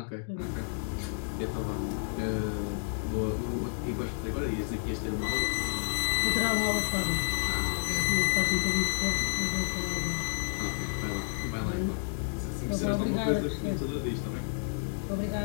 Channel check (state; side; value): silent; right; digital silence